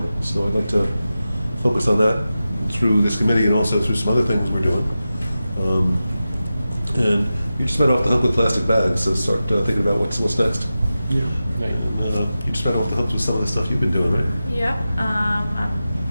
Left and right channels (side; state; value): both; inverted; correlation -0.93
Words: so I'd like to focus on that through this committee and also through some other things we're doing. And you just went off the hook with plastic bags, so start thinking about what's next. Yeah. Right. You just went off the hook with some of the stuff you've been doing, right? Yeah, I'm